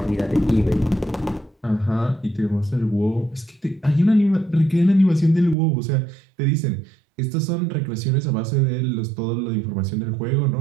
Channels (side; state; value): left; drops out; at 5.6 s